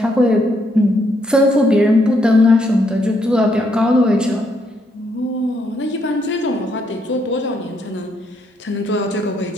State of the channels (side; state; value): both; normal; correlation 0.74